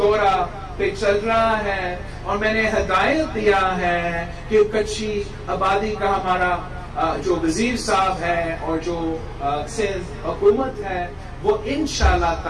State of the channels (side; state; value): both; identical; correlation 1.00